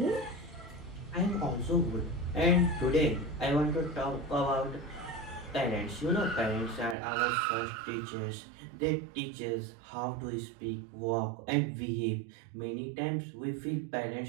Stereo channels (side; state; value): left; drops out; at 7.0 s